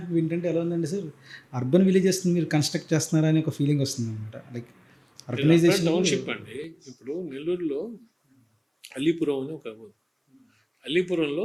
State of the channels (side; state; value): both; identical; correlation 1.00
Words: ఏంటంటే ఎలా ఉందండి సార్, అర్బన్ విలేజెస్ మీరు కన్స్ట్రక్ట్ చేస్తున్నారా అని ఒక ఫీలింగ్ వస్తుంది అనమాట. లైక్ అర్బనైజేషన్ టౌన్షిప్ అండి. ఇప్పుడు నెల్లూరులో అలీపురం అని ఒక ఊరు,